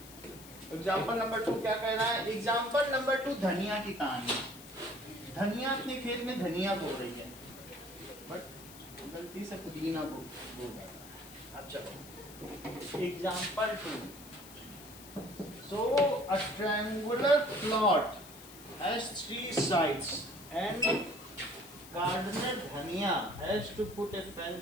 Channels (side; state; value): left; noise; hiss, 17 dB below the sound